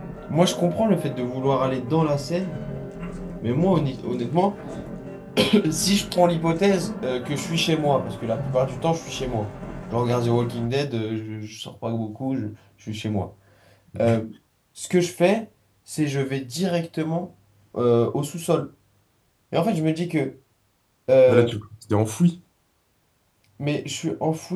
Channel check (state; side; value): identical; both; correlation 1.00